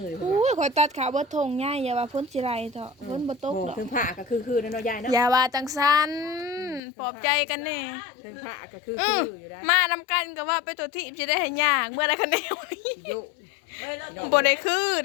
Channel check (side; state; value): right; drops out; at 6.8 s